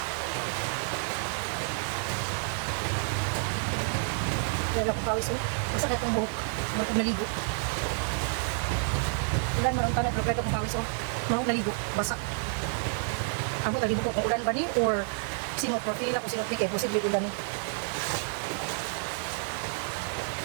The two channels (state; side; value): silent; left; 58 dB below the other